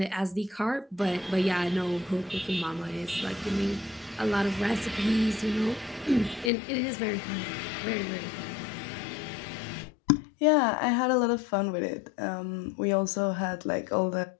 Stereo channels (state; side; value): drops out; right; at 6.5 s